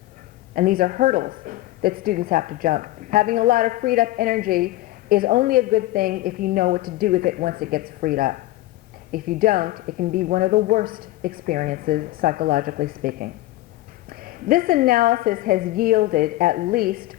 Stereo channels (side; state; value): right; quieter; 16.7 dB